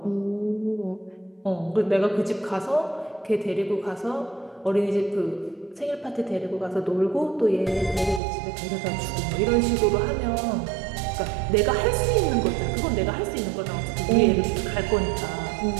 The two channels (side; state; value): left; drops out; at 8.2 s